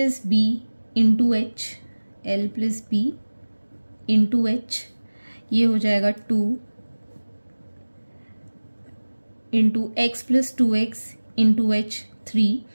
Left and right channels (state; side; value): inverted; both; correlation -1.00